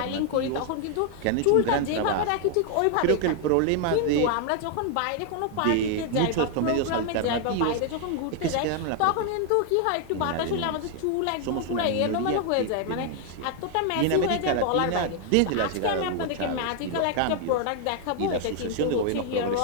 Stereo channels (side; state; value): both; different; correlation 0.00